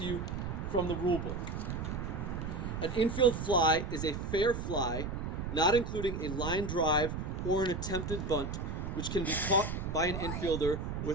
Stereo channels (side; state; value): right; noise; rumble, 4 dB below the sound